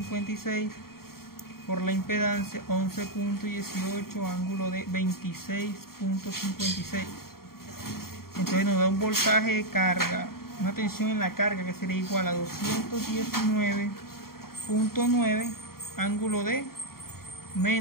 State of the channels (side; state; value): right; late; 0.93 ms